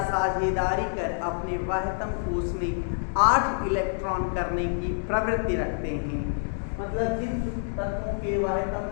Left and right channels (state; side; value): silent; right; digital silence